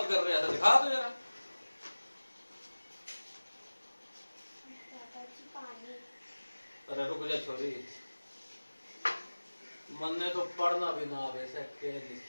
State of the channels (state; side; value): inverted; both; correlation -1.00